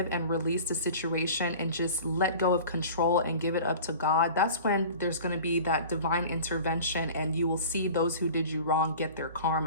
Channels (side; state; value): both; inverted; correlation -0.40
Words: and release the situation and just let go of control and give it up to God, that's when there's going to be that divine intervention, and you will see those who did you wrong get their